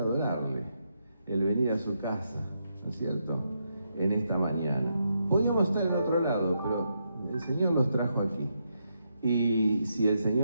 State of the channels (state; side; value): inverted; both; correlation -0.81